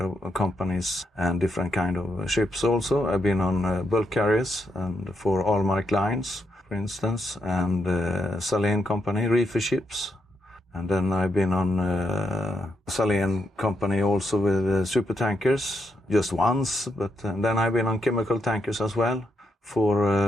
of companies and different kind of ships also. I've been on bulk carriers and for Allmark Lines, for instance, and Lorén company, reefer ships. And then I've been on Lorén company also with super tankers, just once. But then I've been on chemical tankers as well for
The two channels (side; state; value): both; normal; correlation 0.81